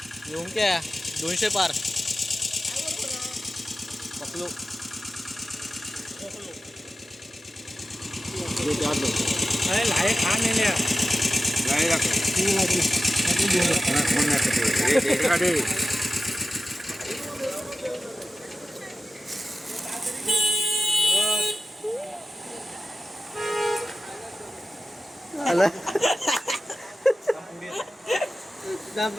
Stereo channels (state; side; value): normal; both; correlation 0.93